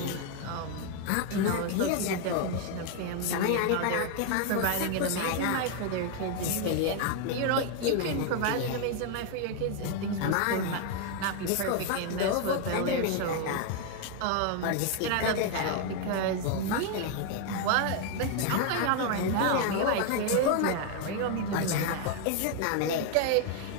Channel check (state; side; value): different; both; correlation 0.01